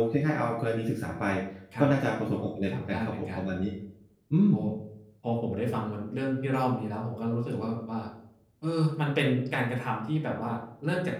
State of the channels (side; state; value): both; identical; correlation 1.00